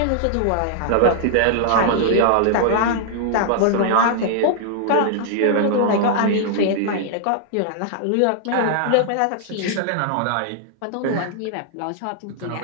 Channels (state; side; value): different; both; correlation -0.01